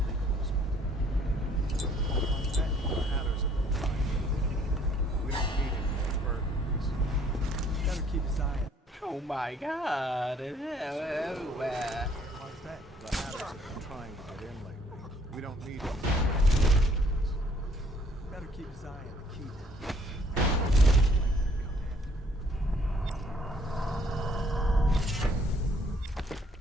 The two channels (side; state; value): both; normal; correlation 0.62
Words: Oh my god, it's everywhere. What's that? The Hatters have been trying to get in lately. We don't need them. Better keep his eye on the key.